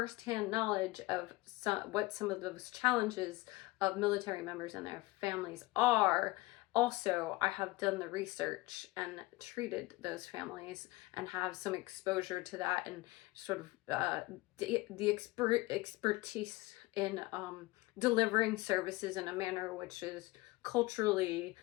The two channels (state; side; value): quieter; right; 21.2 dB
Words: knowledge of what some of those challenges of military members and their families are. Also, I have done the research and treated those families and have some exposure to that and sort of the expertise in delivering services in a manner which is culturally